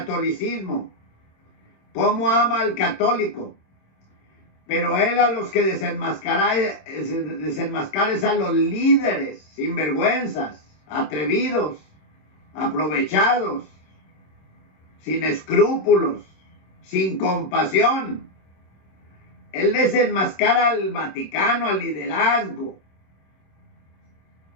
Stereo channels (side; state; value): right; late; 26 ms